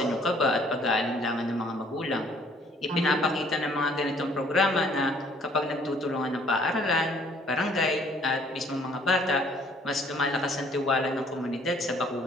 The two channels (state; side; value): normal; both; correlation 0.60